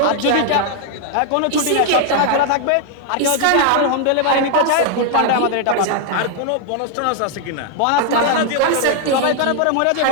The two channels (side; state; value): both; different; correlation 0.00